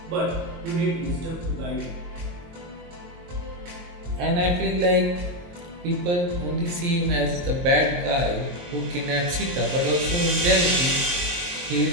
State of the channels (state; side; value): late; left; 23 ms